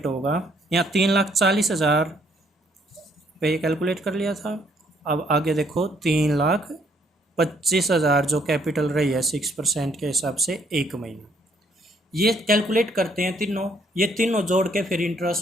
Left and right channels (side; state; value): both; normal; correlation 0.67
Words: होगा, यहाँ 3,40,000 पे कैलकुलेट कर लिया था। अब आगे देखो 3,25,000 जो कैपिटल रही है 6% के हिसाब से 1 महीना, ये कैलकुलेट करते हैं तीनों। ये तीनों जोड़ के फिर